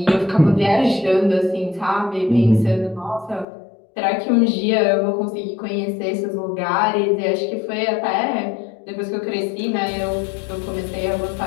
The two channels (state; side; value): drops out; right; at 3.5 s